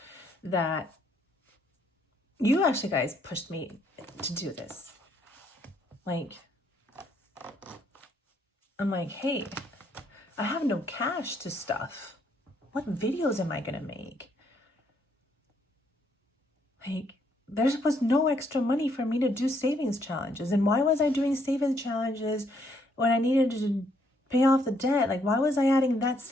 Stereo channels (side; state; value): both; normal; correlation 0.70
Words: that you actually guys pushed me to do this. Like, I'm like, hey, I have no cash to stuff. What videos am I going to make? Like, there was no extra money for me to do savings challenges. And why was I doing savings challenges when I needed to pay off the debt? Like, why was I adding that